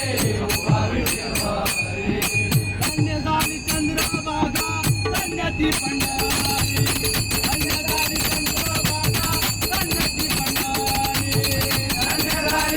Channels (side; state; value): both; identical; correlation 1.00